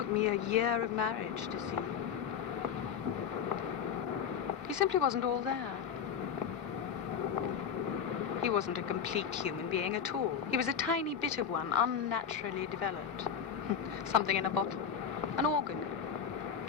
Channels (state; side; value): quieter; right; 7.5 dB